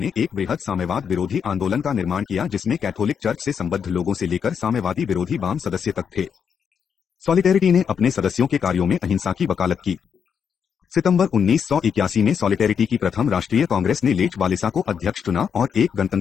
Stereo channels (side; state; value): right; quieter; 7.1 dB